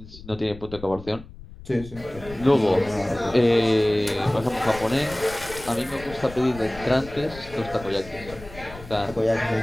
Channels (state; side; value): noise; left; rumble, 16 dB below the sound